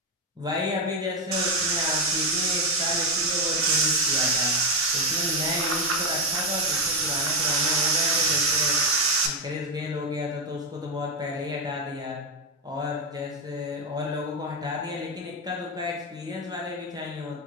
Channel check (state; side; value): normal; both; correlation 0.08